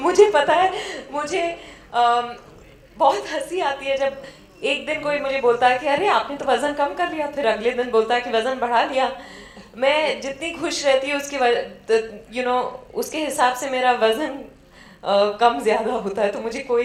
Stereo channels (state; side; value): identical; both; correlation 1.00